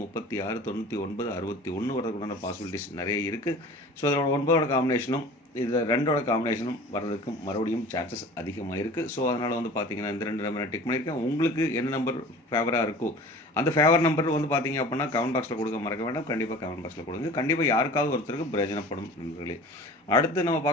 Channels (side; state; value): both; normal; correlation 0.42